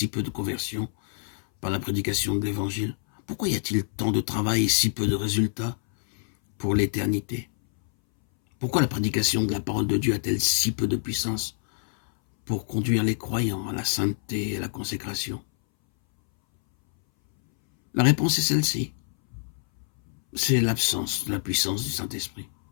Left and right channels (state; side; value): silent; right; 61 dB below the other